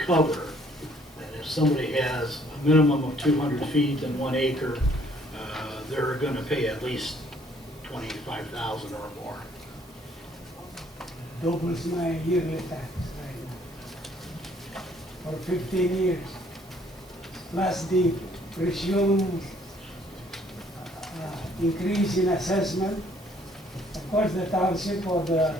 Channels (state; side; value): normal; both; correlation 0.62